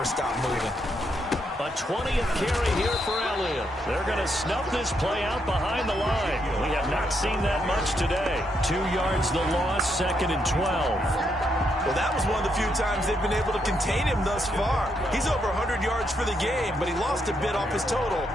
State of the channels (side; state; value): both; normal; correlation 0.78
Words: stop moving? A 20th carry here for Elliott. They're going to snuff this play out behind the line. We have not seen that much today. 2 yards the loss, 2nd and 12. Well, that was one of the few times they've been able to contain him thus far. He's over 100 yards for the game, but he lost a bit off his total